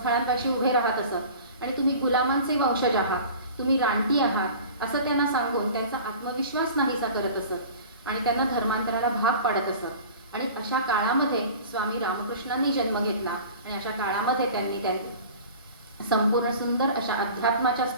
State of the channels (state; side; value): inverted; both; correlation -0.41